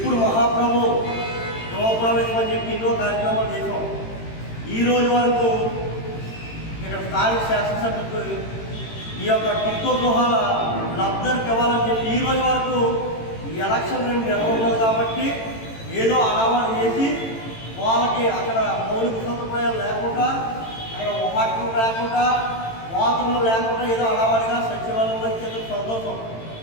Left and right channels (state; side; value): late; right; 18 ms